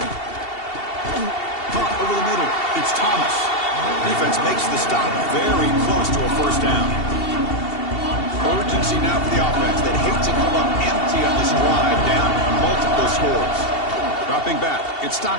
Caught over the middle. It's Thomas. Defense makes the stop very close to a first down. Urgency now for the offense that hate to come up empty on this drive, down multiple scores. Dropping back, it's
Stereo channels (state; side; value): late; right; 2.7 ms